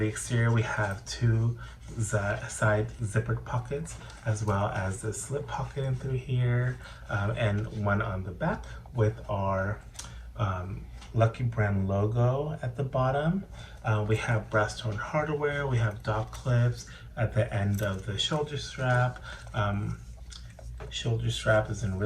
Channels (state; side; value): identical; both; correlation 1.00